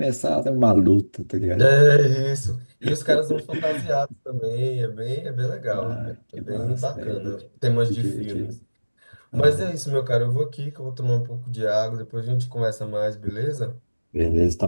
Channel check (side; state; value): both; inverted; correlation -1.00